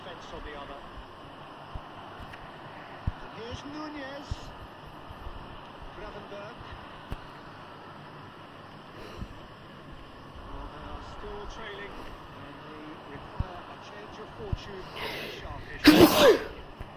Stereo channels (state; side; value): identical; both; correlation 1.00